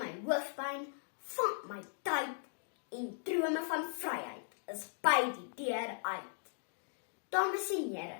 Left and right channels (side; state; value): right; silent; digital silence